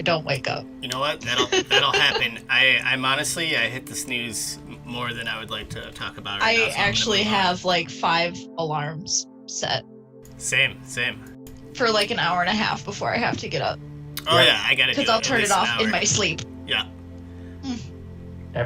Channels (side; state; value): both; identical; correlation 1.00